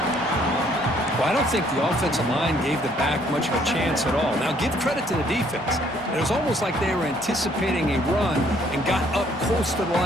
Well, I don't think the offensive line gave the back much of a chance at all. Now, give credit to the defense. It was almost like they were anticipating a run and got up close to the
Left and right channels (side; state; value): both; normal; correlation 0.64